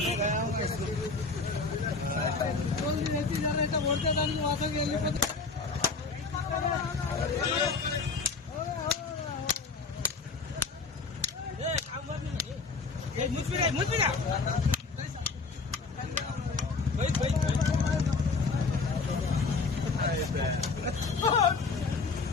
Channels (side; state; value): right; quieter; 4.3 dB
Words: गया होगा इसको बोल दी रहती जा रहा है मोड़ते दान वहां से गेली पे ए काम मत नहीं ये मुझ पे